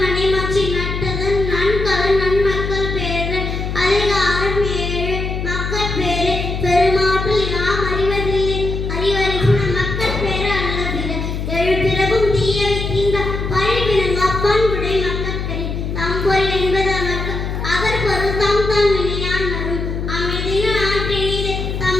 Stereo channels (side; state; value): left; noise; hum, 4 dB below the sound